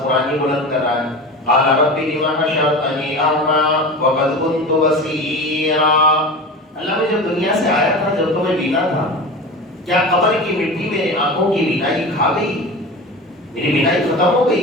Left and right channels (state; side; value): normal; both; correlation 0.30